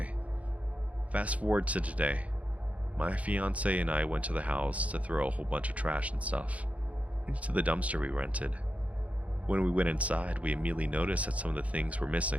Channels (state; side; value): late; left; 0.067 ms